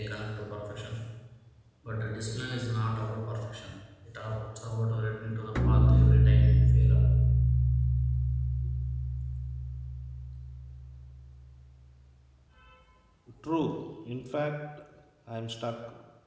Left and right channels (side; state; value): both; identical; correlation 1.00